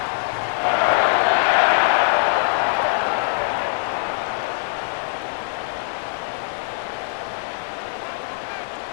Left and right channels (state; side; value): silent; right; 59 dB below the other